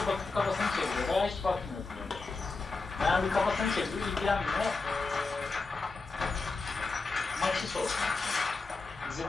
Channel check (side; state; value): right; quieter; 3.9 dB